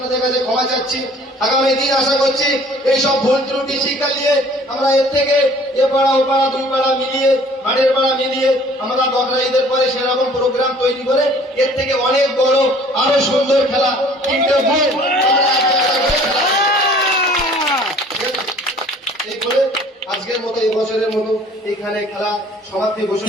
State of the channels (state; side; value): normal; both; correlation 0.53